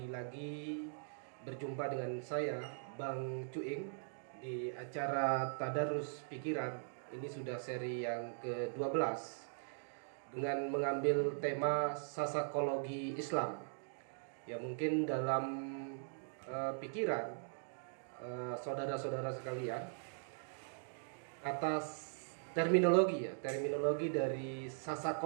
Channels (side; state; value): left; silent; digital silence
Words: lagi berjumpa dengan saya Bang Cuing di acara Tadarus Pikiran. Ini sudah seri yang ke-12 dengan mengambil tema sasakologi Islam. Ya, mungkin dalam pikiran saudara-saudara sekalian, atas terminologi dari